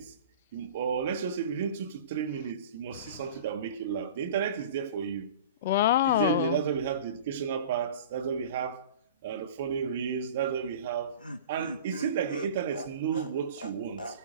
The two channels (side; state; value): both; inverted; correlation -0.37